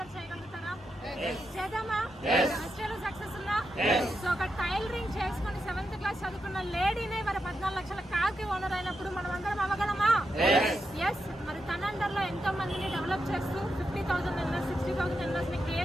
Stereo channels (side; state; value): both; normal; correlation 0.85